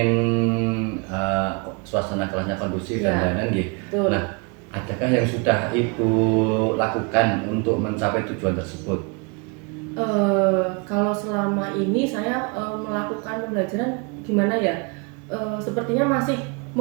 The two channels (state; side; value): quieter; left; 31.7 dB